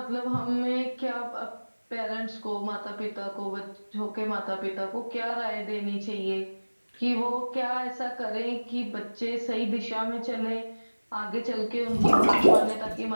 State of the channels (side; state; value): both; inverted; correlation -1.00